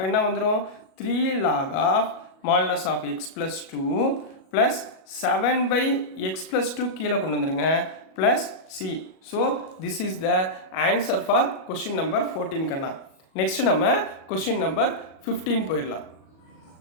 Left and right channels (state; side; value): late; right; 37 ms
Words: என்ன வந்துடும்? 3 log of modulus of x plus 2 plus 7 by x plus 2 கீழே கொண்டு வந்துடுங்க plus c. So this is the answer for question number 14 கண்ணா. நெக்ஸ்ட் நம்ம question number 15 போயிடலாம்.